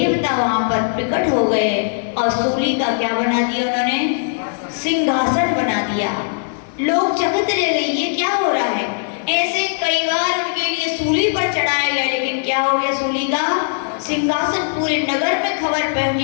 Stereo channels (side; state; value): right; silent; 67 dB below the other